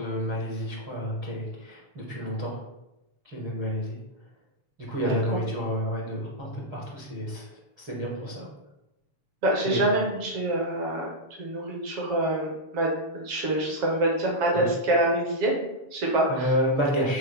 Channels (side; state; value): left; late; 7.0 ms